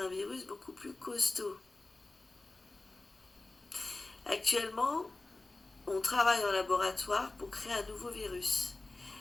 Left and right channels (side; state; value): right; quieter; 3.1 dB